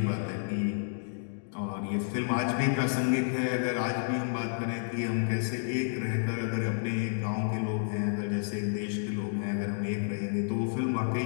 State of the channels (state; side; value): silent; right; digital silence